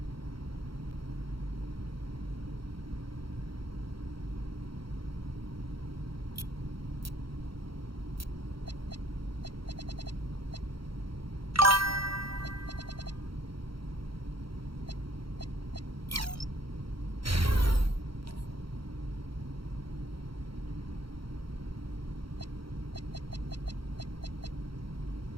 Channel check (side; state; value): left; late; 0.74 ms